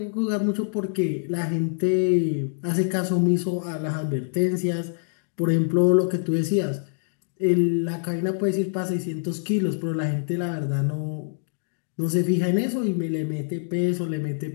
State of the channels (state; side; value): silent; right; digital silence